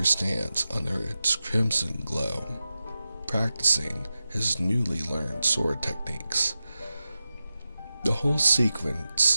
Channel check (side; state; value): both; inverted; correlation -0.93